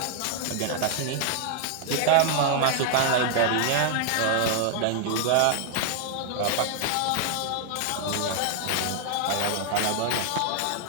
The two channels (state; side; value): different; both; correlation 0.00